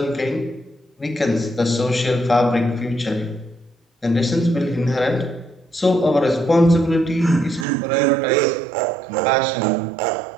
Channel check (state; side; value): drops out; left; at 7.7 s